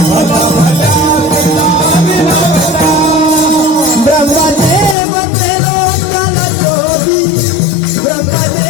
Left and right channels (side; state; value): right; drops out; at 5.0 s